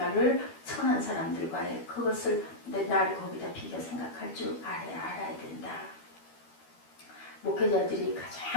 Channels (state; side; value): late; right; 12 ms